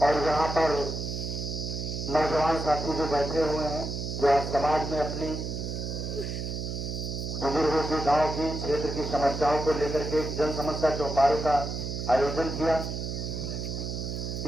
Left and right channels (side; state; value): right; noise; hum, 4 dB below the sound